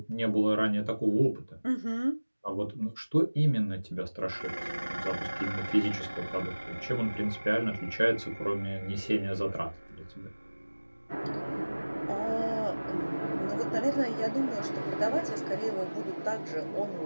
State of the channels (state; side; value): inverted; both; correlation -1.00